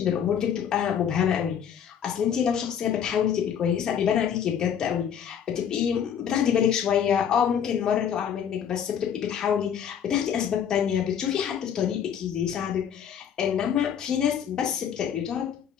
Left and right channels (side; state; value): right; quieter; 8.4 dB